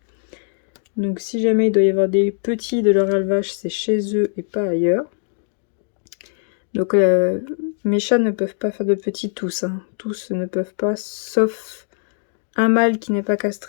Donc si jamais il doit y avoir des petits de leur élevage, c'est chez eux et pas ailleurs. Donc mes chats ne peuvent pas faire de petits tous. Hein. Tous ne peuvent pas, sauf un mâle qui n'est pas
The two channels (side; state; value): right; silent; digital silence